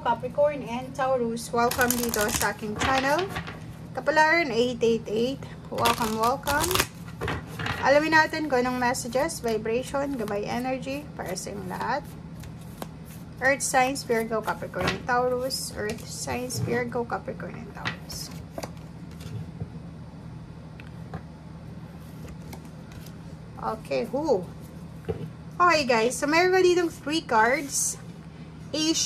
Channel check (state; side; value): identical; both; correlation 1.00